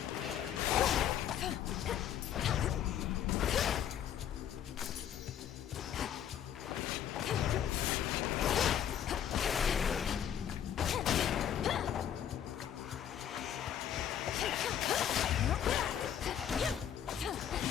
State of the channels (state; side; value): quieter; right; 9.7 dB